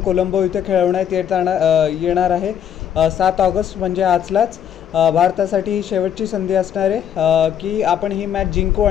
इथे खेळवण्यात येणार आहे 7 ऑगस्ट म्हणजे आजलाच। भारतासाठी ही शेवटची संधी असणार आहे की आपण ही मॅच जिंकू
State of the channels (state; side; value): quieter; right; 9.2 dB